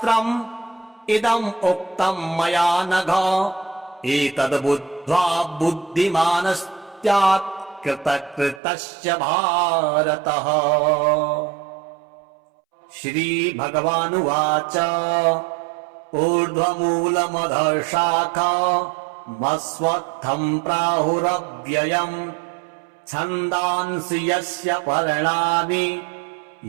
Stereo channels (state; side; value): drops out; left; at 8.6 s